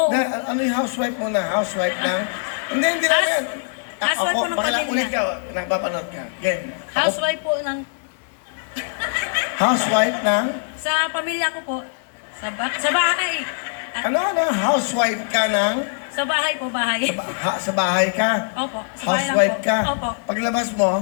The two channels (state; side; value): silent; right; 56 dB below the other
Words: Ano yung housewife mo na? Housewife ng... Hindi na yan. Housewife po ng pamilya. Ulit ka, nakapapanood ka. Game. Housewife po ng... Housewife ng... Sa pamilya ko po. Sa bahay. Ano? Housewife ka ng... Sa bahay po, bahay. Sa bahay ka? Opo. Sa bahay lang Housewife po. ka? Opo. Paglabas mo,